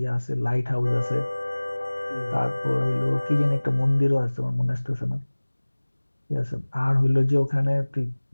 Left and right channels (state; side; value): inverted; both; correlation -1.00